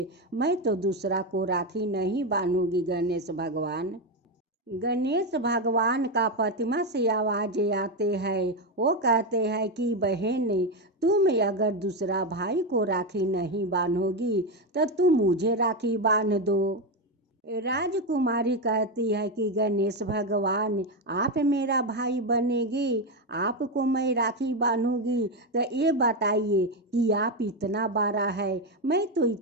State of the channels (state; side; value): normal; both; correlation 0.10